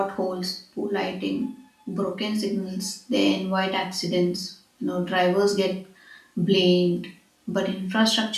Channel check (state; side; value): identical; both; correlation 1.00